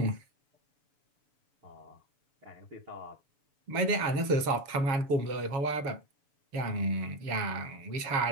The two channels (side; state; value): left; late; 7.0 ms